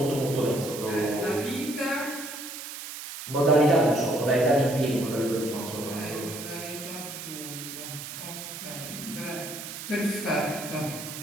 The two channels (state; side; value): noise; right; hiss, 9 dB below the sound